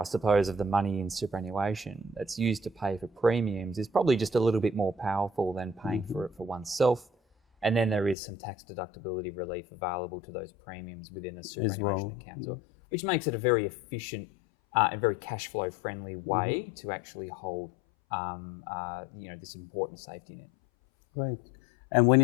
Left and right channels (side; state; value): right; drops out; at 8.2 s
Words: suppose, of the money in superannuation that's used to pay for premiums is probably just a little bit more powerful than paying for it for oneself. And then there is some tax deductibility relief available to those premiums within a superannuation account as well, which makes it a very efficient and very cash flow friendly way to actually hold this important safety net. Right. And when